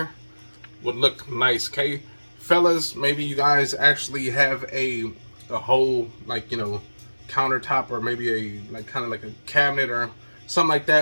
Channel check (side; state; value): both; inverted; correlation -1.00